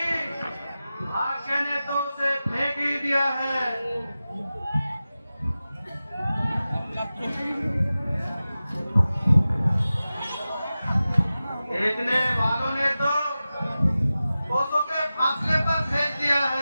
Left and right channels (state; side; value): inverted; both; correlation -0.95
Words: भाग्य ने तो उसे फेंक ही दिया है। फेंकने वालों ने तो कोसों के फासले पर फेंक दिया